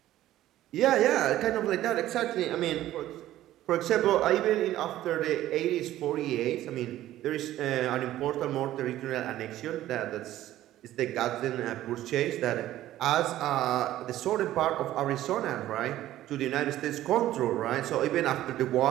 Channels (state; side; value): quieter; left; 14.0 dB